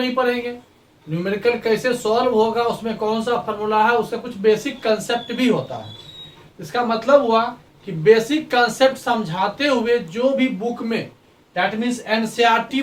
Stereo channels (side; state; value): both; identical; correlation 1.00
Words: पढ़ेंगे, न्यूमेरिकल कैसे सॉल्व होगा, उसमें कौन सा फॉर्मूला है, उसका कुछ बेसिक कंसेप्ट भी होता है। इसका मतलब हुआ कि बेसिक कंसेप्ट समझाते हुए जो भी बुक में, दैट मीन्स एनसीईआरटी